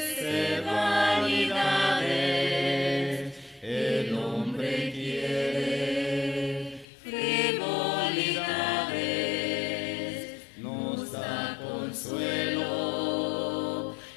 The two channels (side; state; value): right; drops out; at 6.9 s